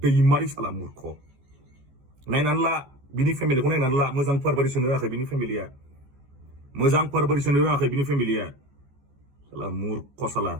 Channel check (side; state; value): left; late; 14 ms